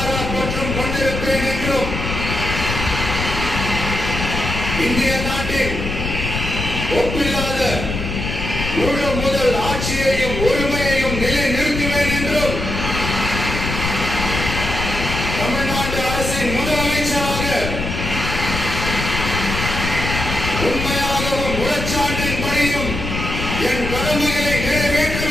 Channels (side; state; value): left; noise; rumble, 4 dB below the sound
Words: பற்றும் கொண்டிருப்பேன் என்றும் இந்திய நாட்டின் ஒப்பில்லாத முழு முதல் ஆட்சியையும் உரிமையையும் நிலைநிறுத்துவேன் என்றும் தமிழ்நாட்டு அரசின் முதலமைச்சராக உண்மையாகவும் உளச்சான்றின்படியும் என் கடமைகளை